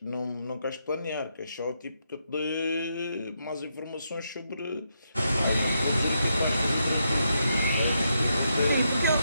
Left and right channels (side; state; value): both; inverted; correlation -0.81